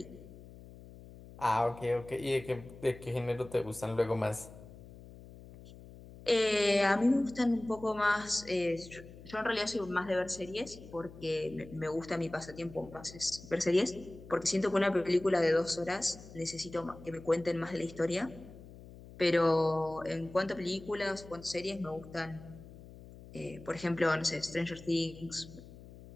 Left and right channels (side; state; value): left; noise; hum, 17 dB below the sound